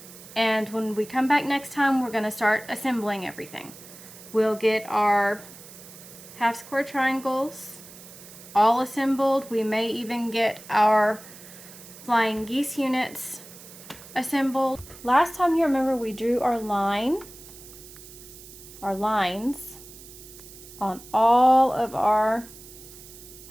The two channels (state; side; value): noise; right; hiss, 18 dB below the sound